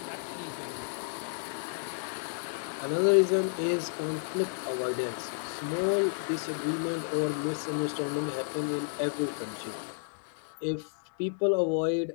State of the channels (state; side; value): silent; right; digital silence